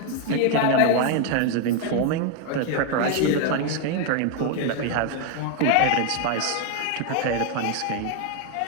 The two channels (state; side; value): different; both; correlation 0.01